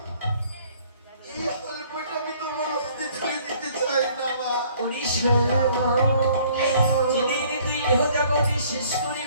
এই হলফটা আমি তোমার হস্তে তুলে দিতে চাই না মা। ওরে সরলা, যেদিন তুই এহ জগতে শেষ করে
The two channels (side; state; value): both; inverted; correlation -0.58